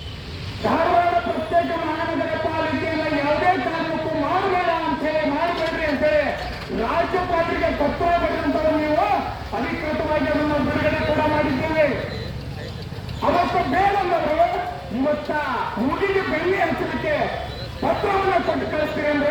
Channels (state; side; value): identical; both; correlation 1.00